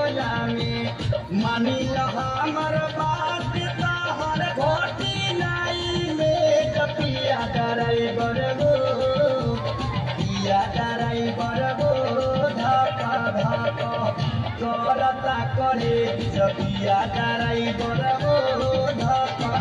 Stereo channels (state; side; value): identical; both; correlation 1.00